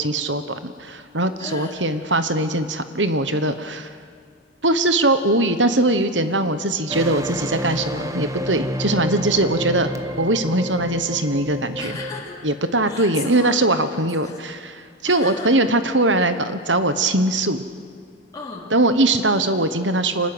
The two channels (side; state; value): both; normal; correlation 0.12